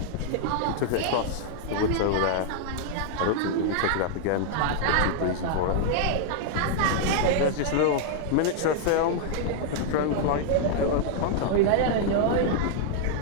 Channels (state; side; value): different; both; correlation -0.01